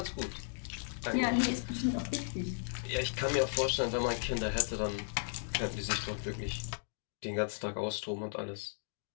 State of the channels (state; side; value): silent; right; digital silence